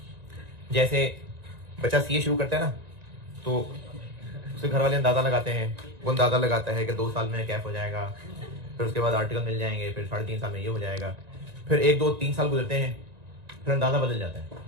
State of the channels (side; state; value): left; late; 1.9 ms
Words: जैसे बच्चा सीए शुरू करता है ना, तो उसके घर वाले अंदाजा लगाते हैं, वो अंदाजा लगाता है कि 2 साल में कैफ हो जाएगा, फिर उसके बाद आर्टिकल मिल जाएंगे, फिर 3.5 साल में ये हो जाएगा, फिर 1, 2, 3 साल गुजरते हैं, फिर अंदाजा बदल जाता है,